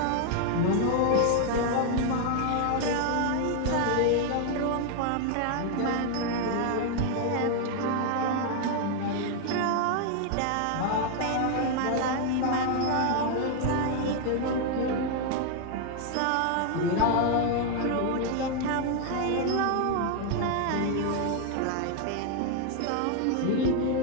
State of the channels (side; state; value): both; different; correlation 0.00